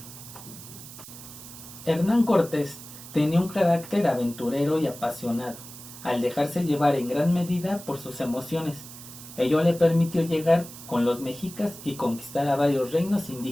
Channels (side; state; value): right; noise; hiss, 15 dB below the sound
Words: Hernán Cortés tenía un carácter aventurero y apasionado, al dejarse llevar en gran medida por sus emociones. Ello le permitió llegar con los mexicas y conquistar a varios reinos